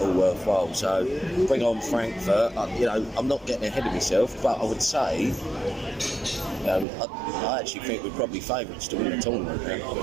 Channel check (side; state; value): left; drops out; at 6.9 s